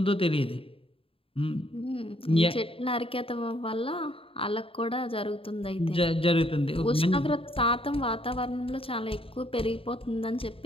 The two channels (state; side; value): late; right; 0.27 ms